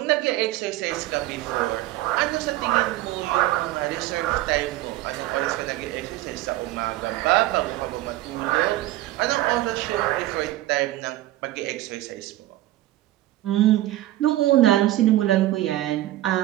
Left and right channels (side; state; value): left; quieter; 15.7 dB